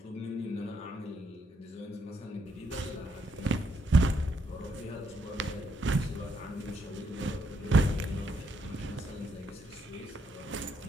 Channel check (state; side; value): normal; both; correlation 0.76